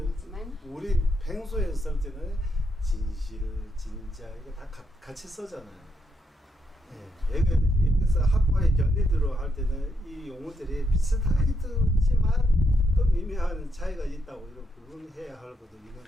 우리 평소에 쓸 때는 진실, 진짜 이거 다 같이 쓰잖아요. 예, 여기서 학과의 견디들어 할 때는 이 용어들이 비슷하게 듣지만 또 미묘한 차이가 있다고 이렇게 구분해야 할 것도 있는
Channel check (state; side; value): normal; both; correlation 0.78